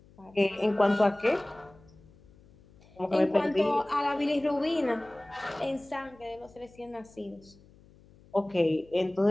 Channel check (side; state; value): left; noise; hum, 26 dB below the sound